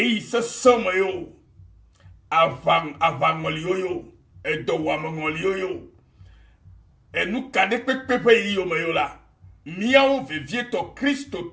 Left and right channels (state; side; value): identical; both; correlation 1.00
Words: se somo yo avangoli yo edowa mangoli yo enu kade pepe yo me yo la miao vivieto Kristo